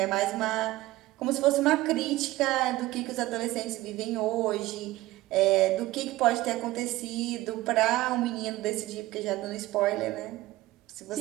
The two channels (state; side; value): quieter; left; 17.7 dB